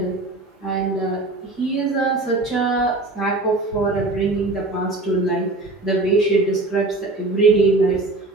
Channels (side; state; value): left; quieter; 3.0 dB